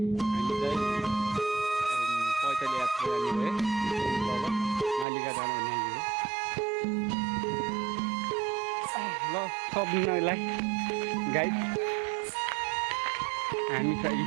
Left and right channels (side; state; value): left; drops out; at 5.1 s